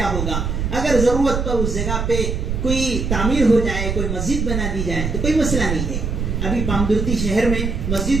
ہوگا، اگر ضرورت پر اس جگہ پہ کوئی تعمیر ہو جائے، کوئی مسجد بنا دی جائے تو کوئی مسئلہ نہیں ہے۔ ابھی پامدرتی شہر میں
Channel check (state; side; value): noise; right; rumble, 2 dB below the sound